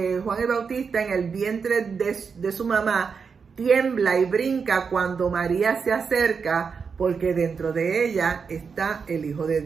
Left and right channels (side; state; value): left; quieter; 5.7 dB